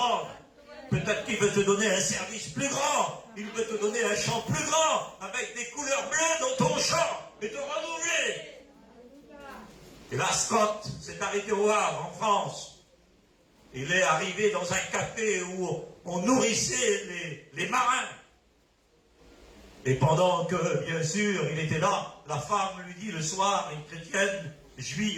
Peut-être qu'il veut te donner un service plus grand. Il veut te donner un champ plus grand, avec des couleurs bleues dans ton champ, et te renouveler. Et là, Scott s'est arrêté au Havre, en France. Il est arrivé dans un café où on nourrissait les marins. Et pendant que, bien sûr, il était là, la femme lui dit le soir, une chrétienne,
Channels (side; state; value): both; identical; correlation 1.00